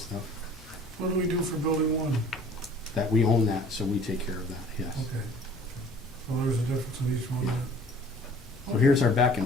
What do we do for building 1? That we own that, so we take care of that, yes. Okay. Well, there's a difference in each one. So here's our back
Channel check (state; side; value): normal; both; correlation 0.51